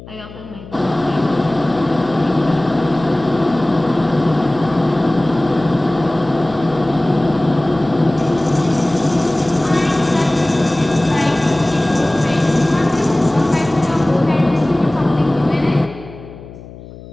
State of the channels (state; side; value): noise; left; hum, 17 dB below the sound